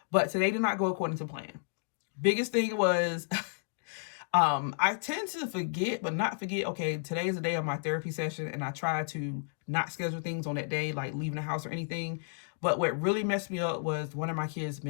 but today did not go according to plan. Biggest thing was I tend to forget, but not forget, okay, today is the day of my therapy session, and I try to not schedule things on that day, like leaving the house or anything. But what really messed me up was one of my kids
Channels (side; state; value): right; silent; digital silence